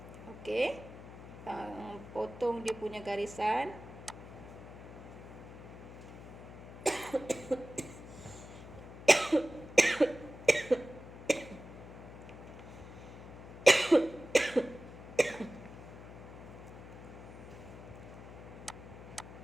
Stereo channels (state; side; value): noise; left; hum, 14 dB below the sound